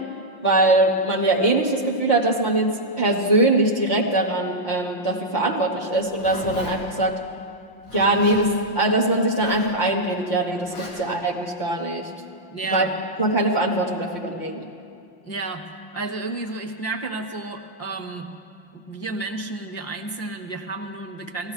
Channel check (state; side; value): late; right; 5.7 ms